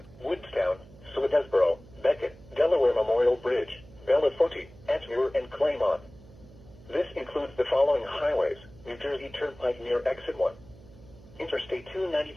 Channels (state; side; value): noise; right; hum, 22 dB below the sound